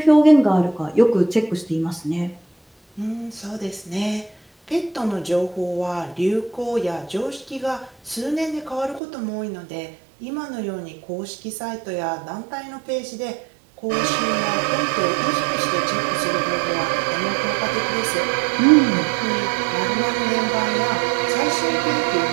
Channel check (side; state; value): left; drops out; at 9.0 s